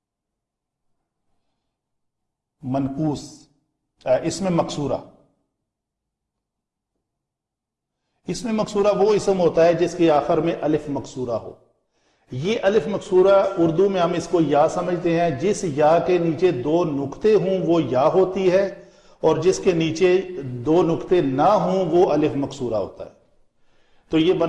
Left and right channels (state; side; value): identical; both; correlation 1.00